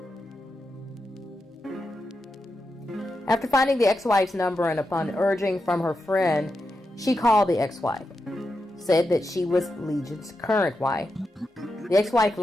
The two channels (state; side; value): normal; both; correlation 0.88